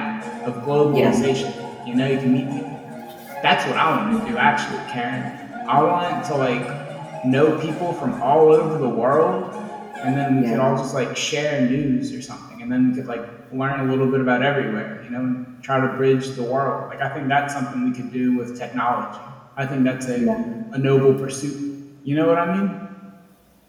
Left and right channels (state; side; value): identical; both; correlation 1.00